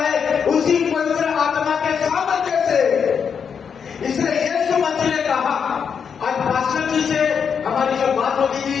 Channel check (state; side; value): quieter; right; 6.8 dB